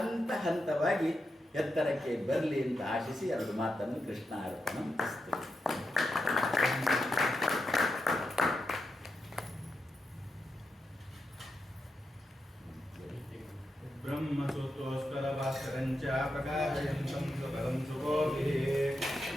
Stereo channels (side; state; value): both; normal; correlation 0.87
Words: ಹಂತವಾಗಿ ಎತ್ತರಕ್ಕೆ ಬರಲಿ ಅಂತ ಆಶಿಸಿ 2 ಮಾತನ್ನು ಕೃಷ್ಣ ಅರ್ಪಣ ಮಾಡಿಸ್ತೇವೆ. ಬ್ರಹ್ಮಸೂತ್ರೋಸ್ಕರ ಭಾಸ್ಕರಂಚ ಪ್ರಕಾಶಯಂತಂ ಸುಕರಂ ಸುಗೋಭಿಃ